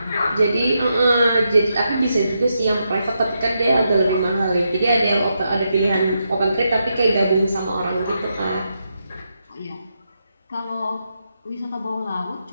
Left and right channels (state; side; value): inverted; both; correlation -0.83